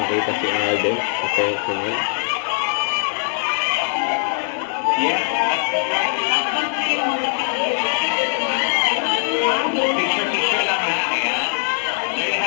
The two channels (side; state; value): right; silent; digital silence